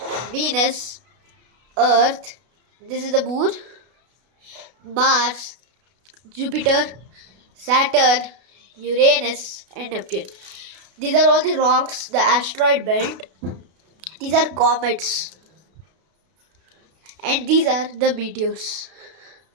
Venus, Earth, this is the moon, Mars, Jupiter, Saturn, Uranus and Neptune. These are all the rocks, the asteroid belt. These are comets and these are the meteors.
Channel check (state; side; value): late; left; 32 ms